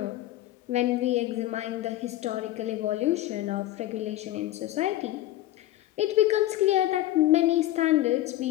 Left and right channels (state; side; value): quieter; right; 14.8 dB